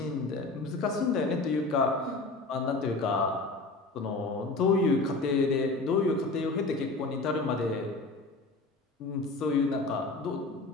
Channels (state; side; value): quieter; right; 3.4 dB